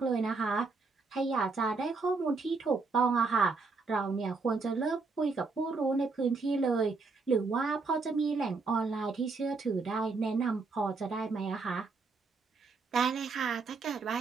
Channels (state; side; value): quieter; left; 4.2 dB